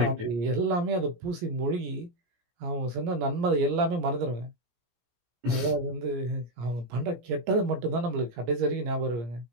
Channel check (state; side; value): late; left; 17 ms